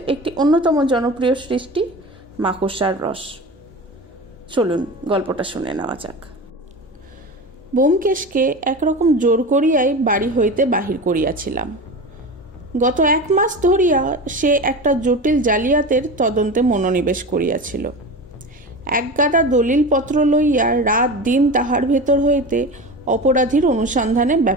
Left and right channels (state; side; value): normal; both; correlation 0.29